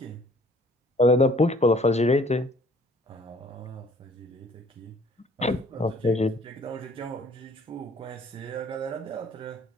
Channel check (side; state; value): both; normal; correlation 0.57